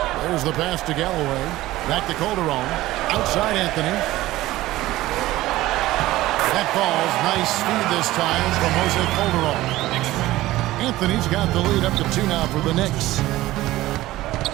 There's the pass to Galloway. Back to Calderon. Outside Anthony. That ball's nice speed this time from Jose Calderon. Anthony's got the lead up to 2 now for the Knicks.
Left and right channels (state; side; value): quieter; left; 16.7 dB